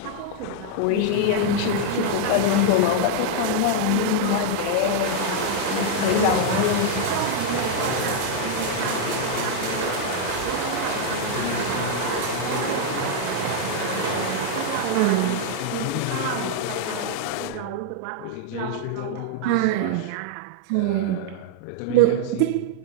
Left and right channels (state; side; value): different; both; correlation 0.00